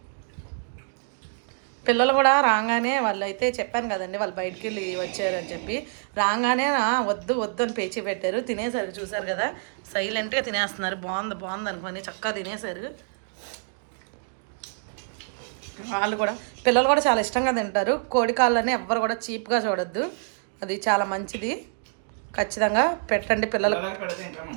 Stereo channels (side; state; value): left; silent; 61 dB below the other